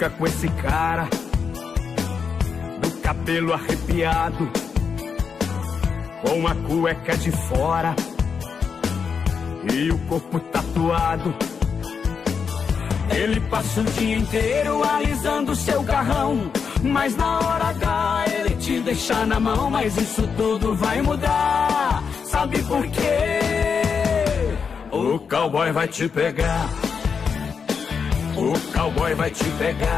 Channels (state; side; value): quieter; right; 6.1 dB